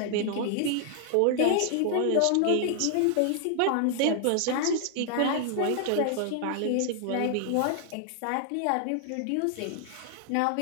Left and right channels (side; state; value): both; different; correlation 0.00